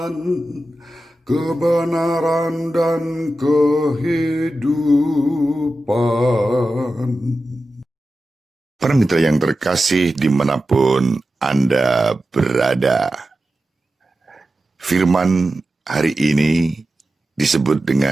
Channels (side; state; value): both; normal; correlation 0.92